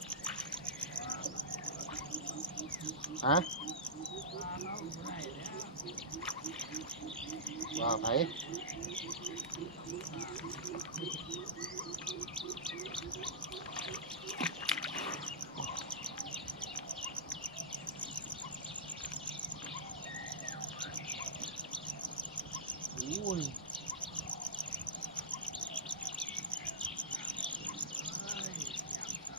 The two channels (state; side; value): normal; both; correlation -0.16